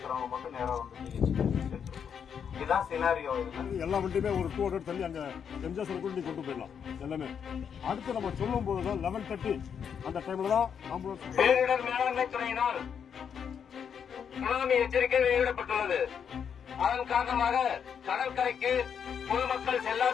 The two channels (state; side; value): quieter; right; 7.5 dB